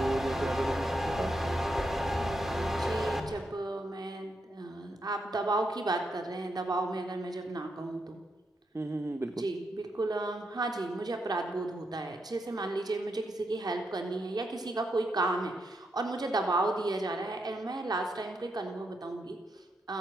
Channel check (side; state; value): both; normal; correlation 0.82